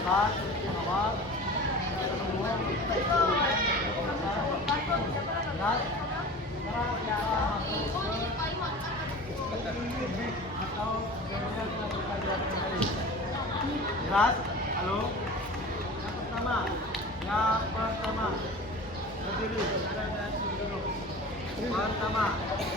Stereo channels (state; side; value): normal; both; correlation 0.37